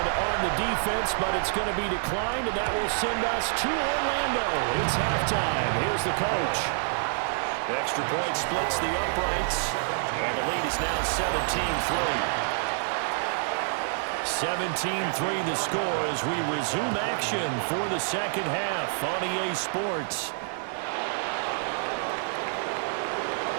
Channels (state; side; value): silent; left; digital silence